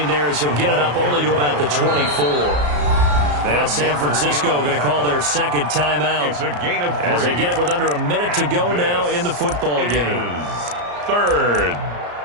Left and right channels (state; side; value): late; left; 34 ms